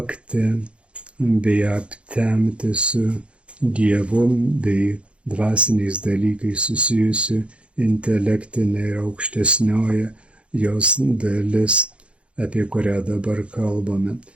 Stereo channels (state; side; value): late; left; 0.060 ms